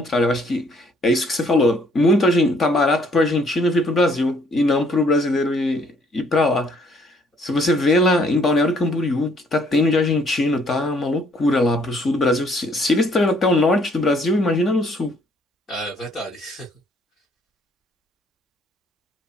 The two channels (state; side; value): normal; both; correlation 0.64